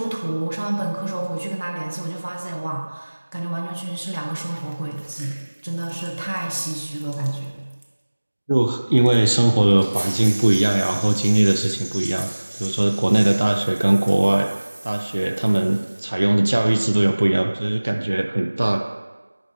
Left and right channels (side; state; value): both; inverted; correlation -1.00